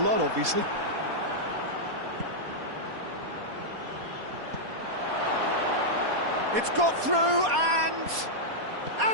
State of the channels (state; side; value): late; left; 4.2 ms